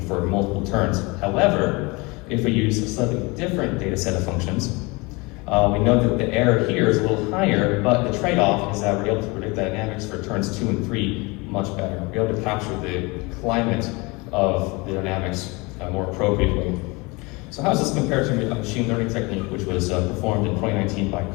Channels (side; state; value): right; quieter; 26.1 dB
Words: for multiple turns. However, if we use a slightly different data set of functions, we know that the error here is a little higher, but the trade-off is that we're able to predict the dynamics for turns 2 and 3 much better. We're able to capture the climate of the dynamics more appropriately. So how does this compare to a machine learning technique which was performed in 2019 by